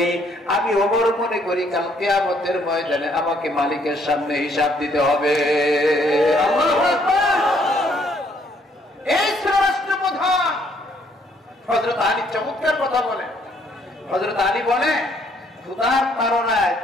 মনে করি কাল কিয়ামতের ময়দানে আমাকে মালিকের সামনে হিসাব দিতে হবে। আল্লাহু আকবার। এই ছিল রাষ্ট্রপ্রধান। হযরত আলী চমৎকার কথা বলেন। হযরত আলী বলে, ক্ষুধার তাড়নায়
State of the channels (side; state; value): both; normal; correlation 0.67